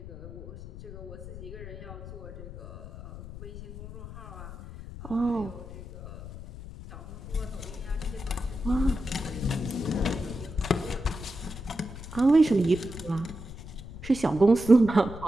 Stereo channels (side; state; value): left; noise; rumble, 12 dB below the sound